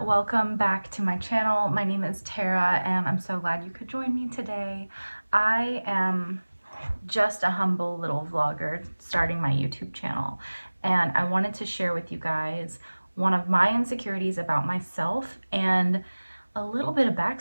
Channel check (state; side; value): inverted; both; correlation -1.00